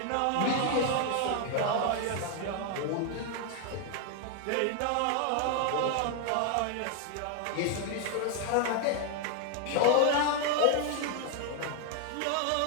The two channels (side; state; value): both; different; correlation 0.00